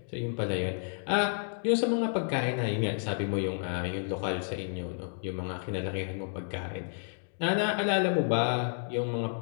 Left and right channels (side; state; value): right; silent; digital silence